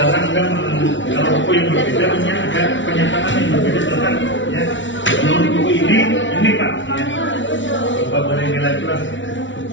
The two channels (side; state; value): right; late; 0.55 ms